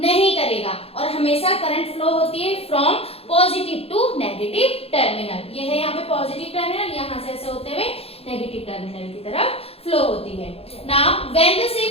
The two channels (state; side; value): late; right; 0.29 ms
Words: करेगा। और हमेशा करंट फ्लो होती है from positive to negative terminal. ये है यहाँ पे पॉजिटिव टर्मिनल, यहाँ से ऐसे होते हुए नेगेटिव टर्मिनल की तरफ फ्लो होती है। Now when the